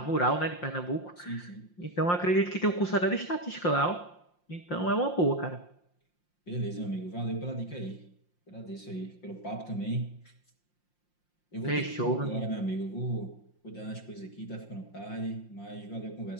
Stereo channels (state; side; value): late; right; 5.7 ms